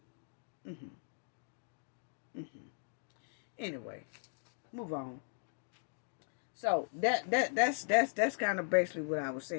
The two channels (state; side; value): silent; right; digital silence